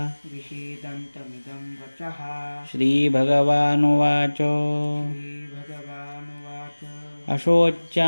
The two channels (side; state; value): both; inverted; correlation -1.00